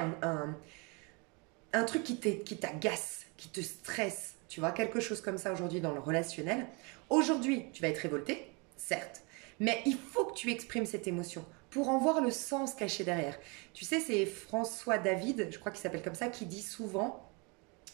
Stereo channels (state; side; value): quieter; left; 30.9 dB